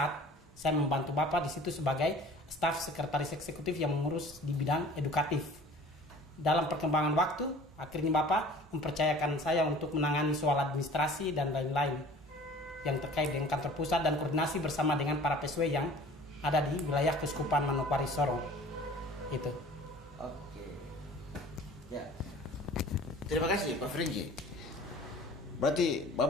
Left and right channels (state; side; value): normal; both; correlation 0.46